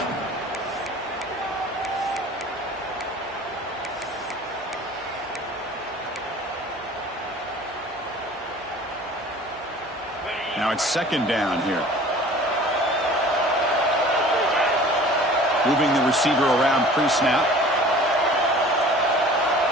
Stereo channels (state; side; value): normal; both; correlation 0.46